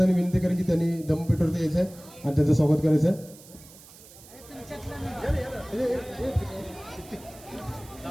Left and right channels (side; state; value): right; noise; hiss, 21 dB below the sound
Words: विनंती करेन की त्यांनी दमपीठवरती यायचं आहे आणि त्यांचं स्वागत करायचं आहे.